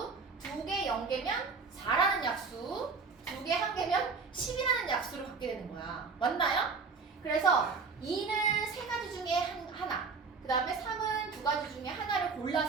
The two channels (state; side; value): quieter; left; 4.8 dB